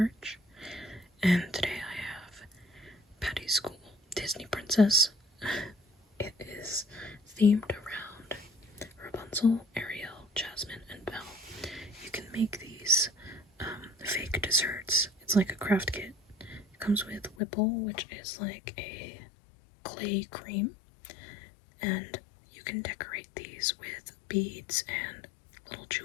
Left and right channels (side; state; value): right; drops out; at 17.4 s